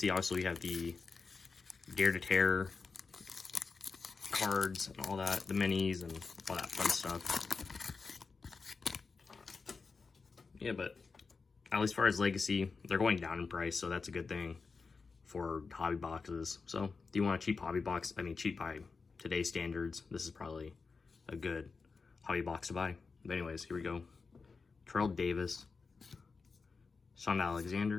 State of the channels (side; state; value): right; quieter; 4.6 dB